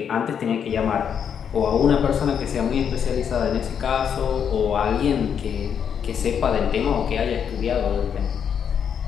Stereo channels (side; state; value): right; quieter; 7.8 dB